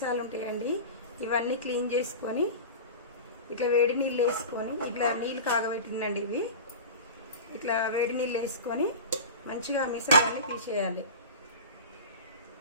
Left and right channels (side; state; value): both; inverted; correlation -0.31